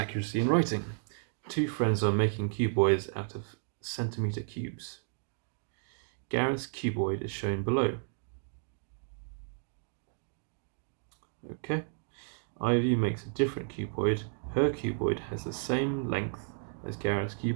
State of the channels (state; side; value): silent; left; digital silence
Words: in writing. 2 friends are making cuboids out of centimeter cubes. Gareth's cuboid is shown below. Okay. Ivy makes a different cuboid. Her cuboid has the same length as Gareth's